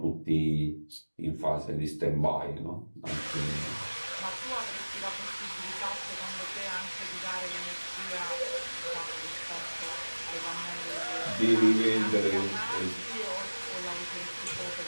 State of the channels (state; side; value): inverted; both; correlation -1.00